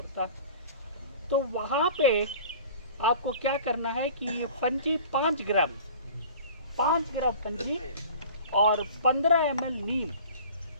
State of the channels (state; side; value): inverted; both; correlation -0.43